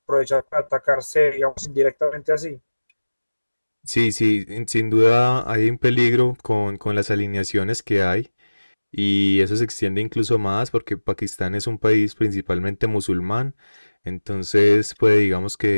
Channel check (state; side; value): inverted; both; correlation -1.00